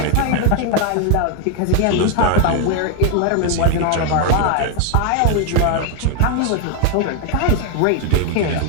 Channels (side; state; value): both; different; correlation 0.01